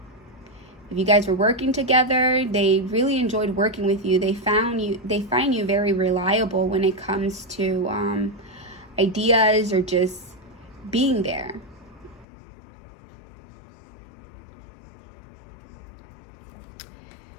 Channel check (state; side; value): drops out; right; at 12.2 s